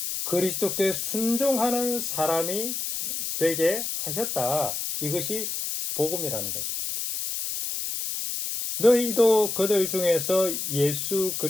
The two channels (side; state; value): left; noise; hiss, 3 dB below the sound